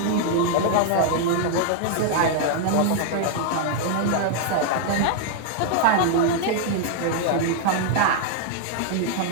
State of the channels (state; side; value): different; both; correlation 0.00